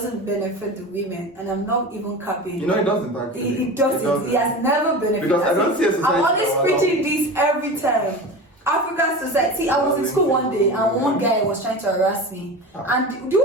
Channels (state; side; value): normal; both; correlation 0.30